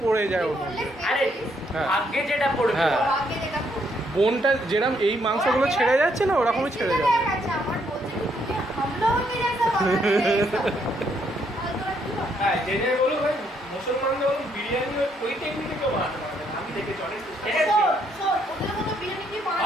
পড়ে যায় ওর মধ্যে আরে হ্যাঁ। আগে যেটা পড়বে হ্যাঁ। আগে যেটা পড়ে। বোনটা যেরকম এই মাংসগুলো ছেড়ে যাচ্ছে না ওরকমই ছেড়ে যাবে আচ্ছা আমার বলছে কি তুমি हम लोगों के जैसा बनाते हैं ये सब। আর তোরা কি বল? হ্যাঁ জেনে বলো ভাই মুসলমানরা বলো বিরিয়ানি ওই টেকনিকে কেউ বানাতে পারবে না আমি দেখেছি অনেক শোন, শোন, ওদের মতো বিরিয়ানি কি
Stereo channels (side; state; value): both; normal; correlation 0.72